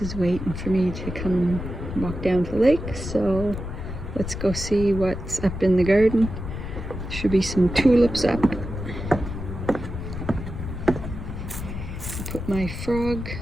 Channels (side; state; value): left; noise; rumble, 7 dB below the sound